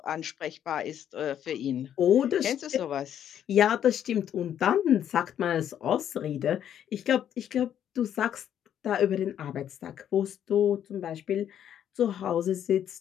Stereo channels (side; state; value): right; quieter; 9.9 dB